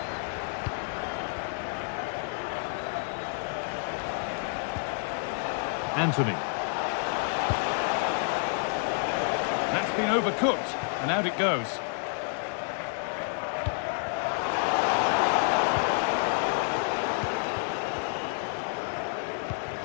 Anthony. That's been overcooked, and out it goes.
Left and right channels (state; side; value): silent; right; 58 dB below the other